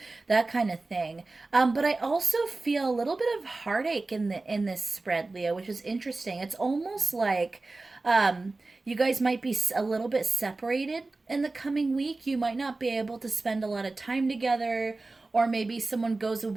that kind of thing. But I also feel a little bit of heartache in this spread, Leo, which is interesting. It's almost like you guys might be a little bit separated in the coming week. You might not be able to spend a lot of time together, or maybe someone goes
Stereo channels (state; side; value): quieter; left; 3.4 dB